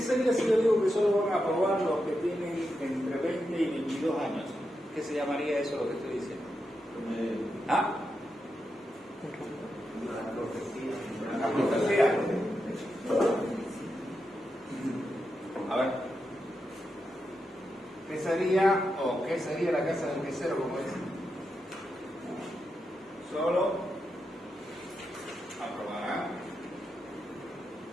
sería si yo digo que solo van a aprobar los que tienen entre 20 y 22 años? ¿Qué se llamaría eso lo que estoy diciendo? ¿Ah? Una profecía. A ver. ¿Qué sería la casa del quesero, como dicen? Solo aprobará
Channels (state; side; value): normal; both; correlation 0.86